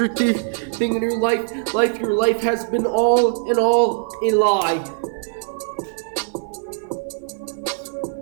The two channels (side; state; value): left; silent; 55 dB below the other